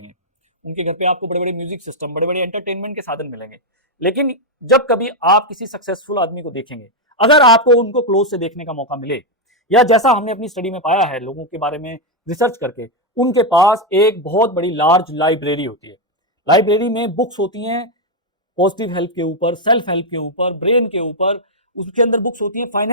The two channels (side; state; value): both; normal; correlation 0.02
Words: उनके घर पे आपको बड़े बड़े म्यूजिक सिस्टम, बड़े बड़े एंटरटेनमेंट के साधन मिलेंगे। लेकिन जब कभी आप किसी सक्सेसफुल आदमी को देखेंगे, अगर आपको उनको क्लोज से देखने का मौका मिले, या जैसा हमने अपनी स्टडी में पाया है लोगों के बारे में रिसर्च करके, उनके पास एक बहुत बड़ी लार्ज लाइब्रेरी होती है। लाइब्रेरी में बुक्स होती हैं पॉजिटिव हेल्थ के ऊपर, सेल्फ हेल्प के ऊपर, ब्रेन के ऊपर, उसके अंदर बुक्स होती हैं